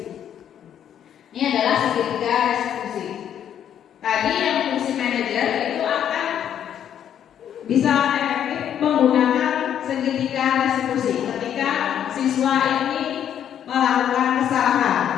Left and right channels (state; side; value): quieter; right; 9.6 dB